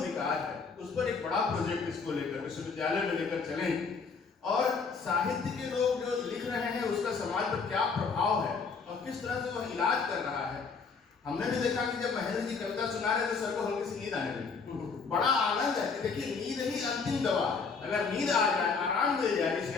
है, उस पर एक बड़ा प्रोजेक्ट इसको लेकर विश्वविद्यालय में लेकर चलें, और साहित्य के लोग जो लिख रहे हैं उसका समाज पर क्या प्रभाव है और किस तरह से वह इलाज कर रहा है। हमने भी देखा कि जब महेंद्र जी कविता सुना रहे तो सर को हल्की सी नींद आने लगी। बड़ा आनंद है कि देखिए नींद ही अंतिम दवा है। अगर नींद आ जाए, आराम मिल जाए इस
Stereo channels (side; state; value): right; quieter; 5.0 dB